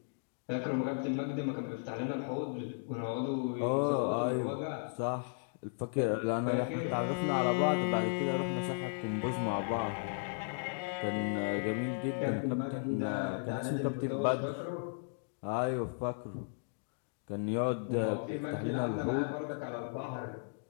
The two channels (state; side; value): silent; right; digital silence